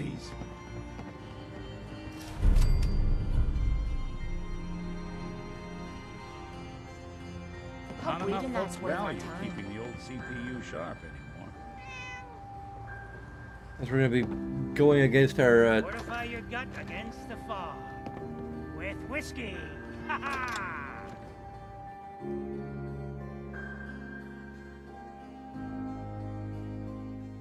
Hope Not enough reading that's folks worth our value time. keeping the old CPU sharp anymore. As we're gonna be going against our. Fortify your gut against the fog. With whiskey! Ha ha!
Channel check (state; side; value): identical; both; correlation 1.00